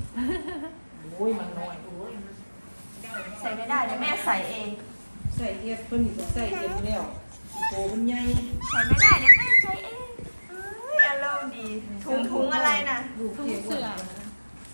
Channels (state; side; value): inverted; both; correlation -1.00